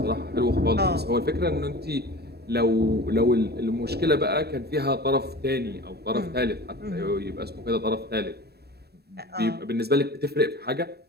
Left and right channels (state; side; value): late; left; 0.47 ms